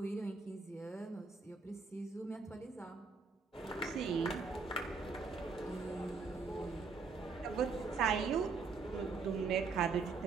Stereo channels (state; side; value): quieter; left; 4.7 dB